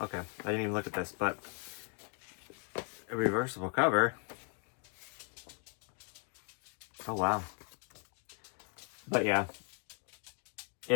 Okay, I didn't even look at this, but a reversible cover. Oh, wow. But yeah,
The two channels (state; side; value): quieter; right; 38.7 dB